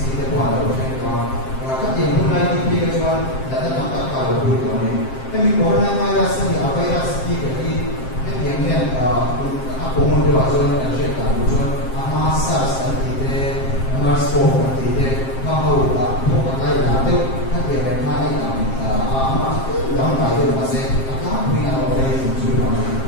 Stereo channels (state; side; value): late; right; 7.5 ms